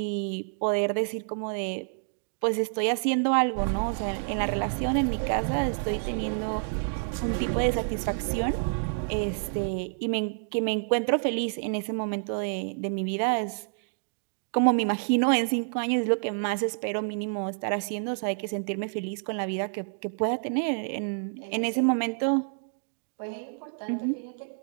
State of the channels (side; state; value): left; silent; digital silence